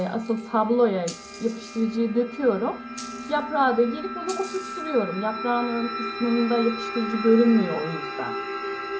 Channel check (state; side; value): identical; both; correlation 1.00